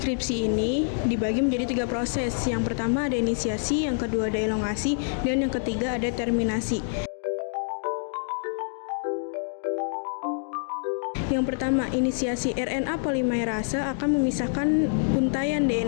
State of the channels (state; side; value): silent; right; digital silence